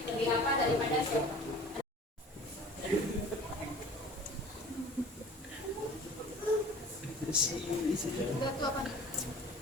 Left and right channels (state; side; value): normal; both; correlation 0.44